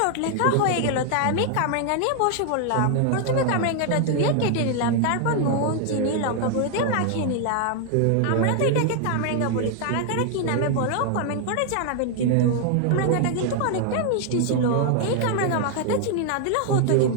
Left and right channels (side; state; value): both; different; correlation 0.00